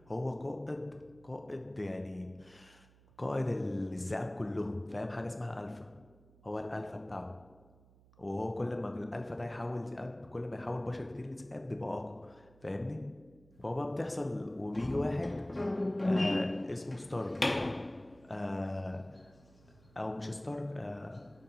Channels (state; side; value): noise; right; hum, 25 dB below the sound